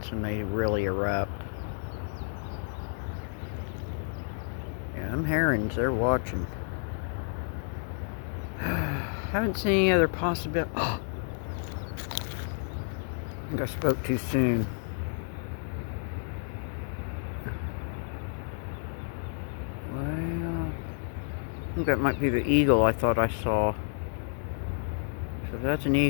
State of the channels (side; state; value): right; silent; 58 dB below the other